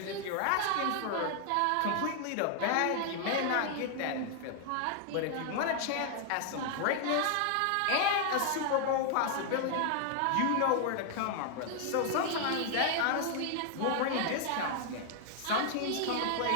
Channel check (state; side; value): different; both; correlation 0.00